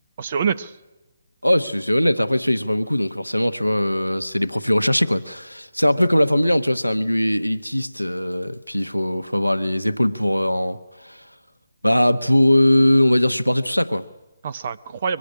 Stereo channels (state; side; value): inverted; both; correlation -0.97